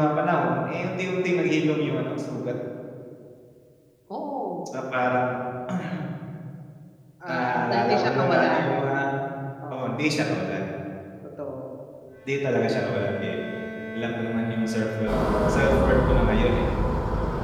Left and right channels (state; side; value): identical; both; correlation 1.00